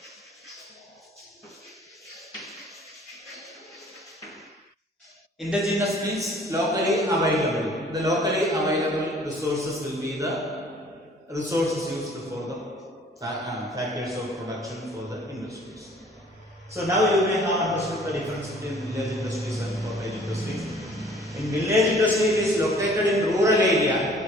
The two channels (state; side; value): normal; both; correlation 0.54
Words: Indigenous means locally available. The locally available resources will be the resources used for the factors of production for the industries. So now you may have understood the difference between village industries and cottage industries. In village industry, it is located in rural area